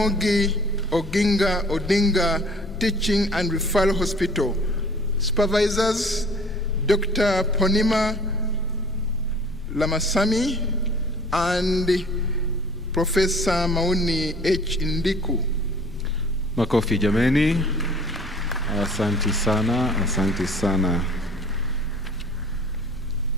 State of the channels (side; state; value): left; noise; rumble, 15 dB below the sound